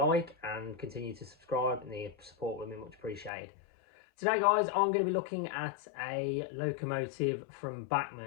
like and continue to subscribe, and the support would be much appreciated. Today guys, I'm going to be looking at a Locomotive from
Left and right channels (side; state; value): right; drops out; at 3.3 s